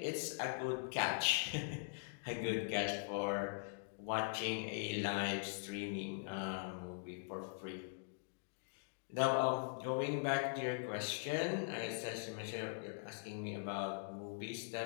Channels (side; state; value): right; silent; digital silence